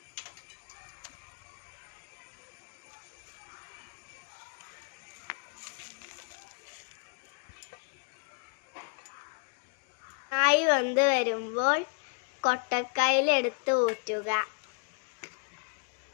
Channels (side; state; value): right; quieter; 38.2 dB